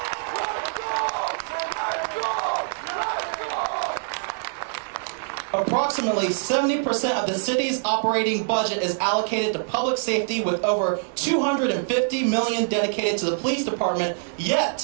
Approximately 70% of the city's operating budget is allocated to public safety, with over $250 million dedicated to the police department,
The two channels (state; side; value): silent; left; 62 dB below the other